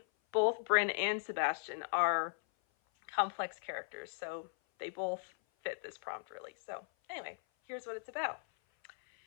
both Brynn and Sebastian are complex characters. So they both fit this prompt really. So anyway, here's what it's about.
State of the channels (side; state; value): right; silent; 53 dB below the other